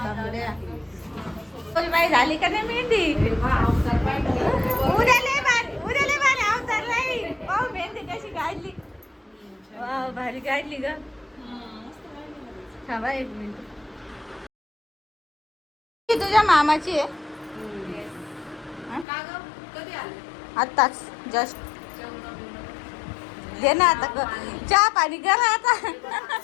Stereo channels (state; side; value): drops out; right; at 19.1 s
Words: बाई झाली का नाही मेहंदी? उद्या लय भारी अवतार नाही. पाहू मेहंदी कशी काढली. वाव भारी काढली ग. थांबा एक मिनिट. ही तुझ्या मामाची आहे? आत्ताच जस्ट दे ना आता. चहा पाणी करा आता.